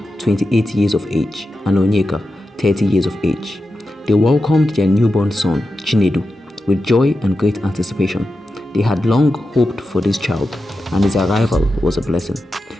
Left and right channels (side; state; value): both; normal; correlation 0.91